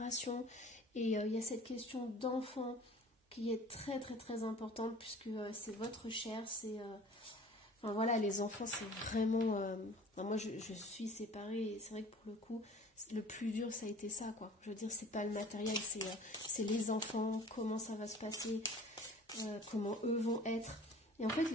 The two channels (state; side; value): normal; both; correlation 0.46